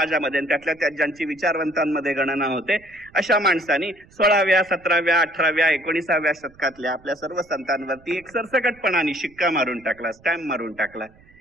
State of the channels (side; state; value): right; noise; rumble, 27 dB below the sound